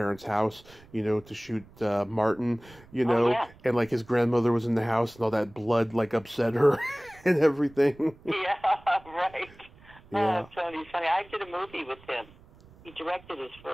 house, to shoot Martin, and like his grandmother was in the house and all that blood like upset her and everything. Yeah, right. Yeah. Oh, Tony's funny. I did a movie with him. He directed his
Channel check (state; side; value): noise; right; rumble, 24 dB below the sound